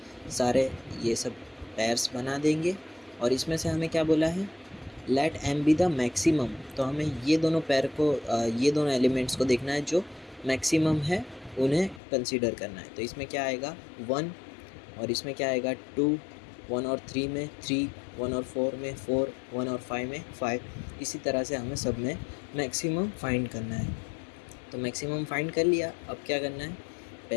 सारे ये सब पेयर्स बना देंगे, और इसमें से हमें क्या बोला है, let m be the maximum. तो हमें ये दोनों पेयर को ये दोनों एलिमेंट्स को देखना है जो मैक्सिमम है, उन्हें कंसीडर करना है। तो इसमें क्या आएगा 1, और इसमें क्या आएगा 2, 1 और 3 में 3, 1 और 4 में 4, 1 और 5 में 5। इसी तरह से हमें सब में मैक्सिमम फाइंड करना है। तो मैक्सिमम फाइंड कर लिया, अब क्या करना है,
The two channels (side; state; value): right; drops out; at 12.0 s